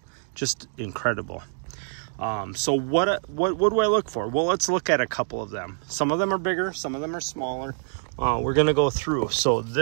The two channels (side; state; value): left; silent; digital silence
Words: Just incredible. So what do I look for? Well, let's look at a couple of them. Some of them are bigger, some of them are smaller. We're gonna go through. So